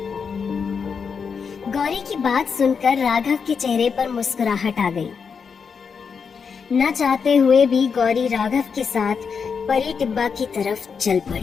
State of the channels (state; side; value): quieter; right; 6.0 dB